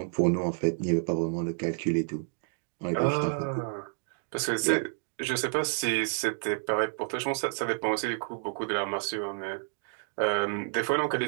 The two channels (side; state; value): left; silent; 58 dB below the other